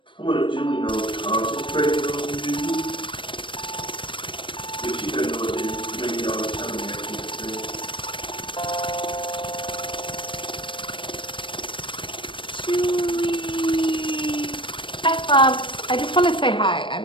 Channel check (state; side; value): late; right; 0.24 ms